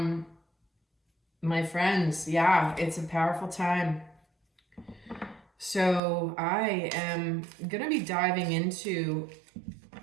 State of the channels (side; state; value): left; drops out; at 6.0 s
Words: my friends, yeah, it's a powerful time. So I am going to be diving into